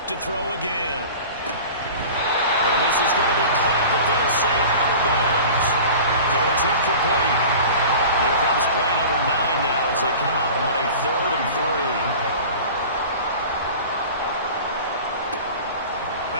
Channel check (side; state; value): both; inverted; correlation -0.38